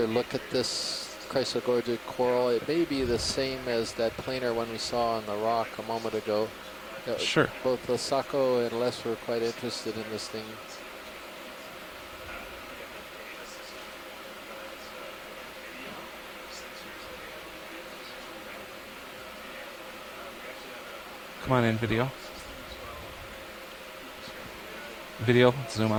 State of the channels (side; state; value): both; identical; correlation 1.00